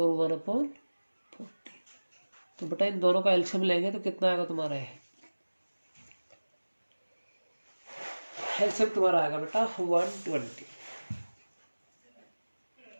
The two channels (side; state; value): both; inverted; correlation -1.00